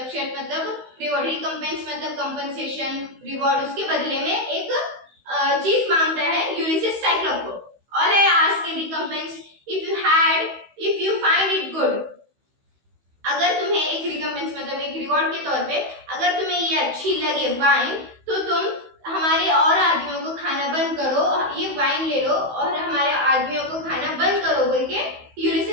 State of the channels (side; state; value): left; late; 16 ms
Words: शर्त मतलब रिवॉर्ड, रिकम्पेंस मतलब कंपनसेशन रिवॉर्ड, उसके बदले में एक चीज मांगता है यूलिसिस साइक्लोप को। All I ask in recompense if you find it good, अगर तुम्हें एक रिकम्पेंस मतलब एक रिवॉर्ड के तौर पे अगर तुम्हें ये अच्छी लगे वाइन, तो तुम हमारे और आदमियों को खाना बंद करो, ये वाइन ले लो और हमारे आदमियों को खाना बंद करो बोल के